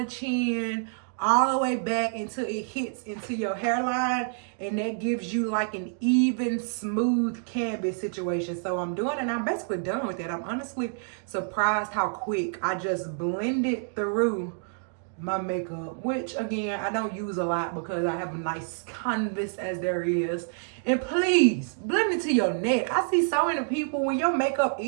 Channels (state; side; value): silent; left; digital silence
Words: chin, all the way back until it hits into your hairline, and that gives you like an even, smooth canvas situation. So I'm doing it, and I'm basically done with that. I'm honestly surprised how quick I just blended through my makeup, which again, I don't use a lot because I have a nice canvas as there is. And please blend it to your neck. I see so many people, when your makeup